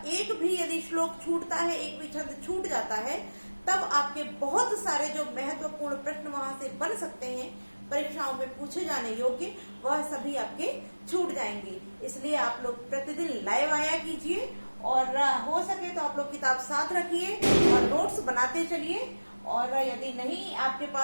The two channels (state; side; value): inverted; both; correlation -1.00